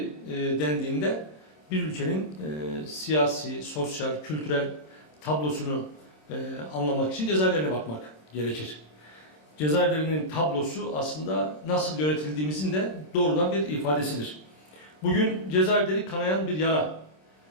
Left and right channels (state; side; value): late; right; 26 ms